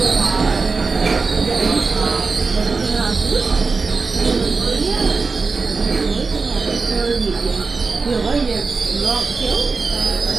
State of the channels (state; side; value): quieter; left; 4.3 dB